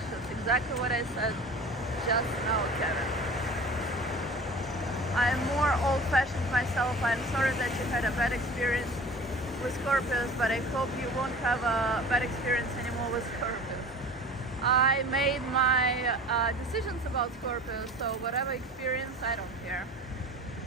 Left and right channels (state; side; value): normal; both; correlation 0.40